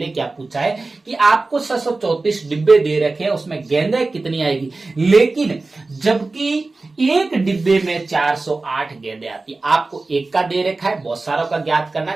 क्या पूछा है कि आपको 634 डिब्बे दे रखे हैं, उसमें गेंदें कितनी आएगी। लेकिन जबकि एक डिब्बे में 408 गेंदें आती है, आपको एक का दे रखा है, बहुत सारों का ज्ञात करना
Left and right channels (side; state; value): left; quieter; 3.5 dB